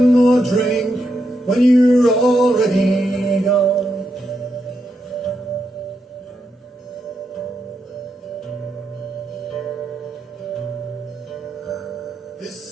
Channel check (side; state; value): both; normal; correlation 0.83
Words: more drink when you're already gone? This